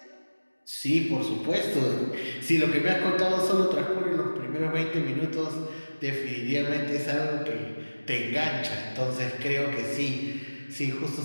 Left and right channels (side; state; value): both; inverted; correlation -1.00